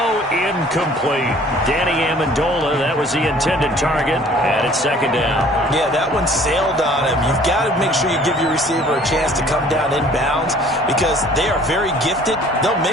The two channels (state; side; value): normal; both; correlation 0.53